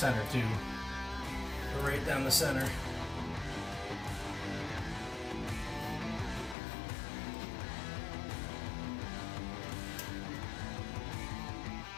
too, right down the center.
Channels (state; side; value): drops out; right; at 6.6 s